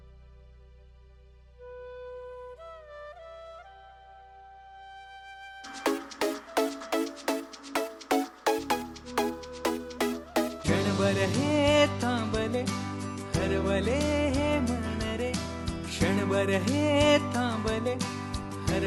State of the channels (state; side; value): identical; both; correlation 1.00